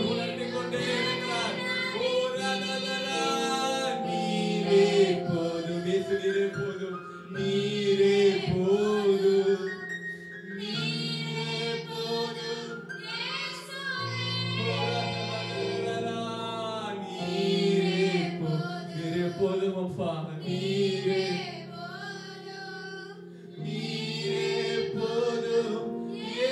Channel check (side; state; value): both; identical; correlation 1.00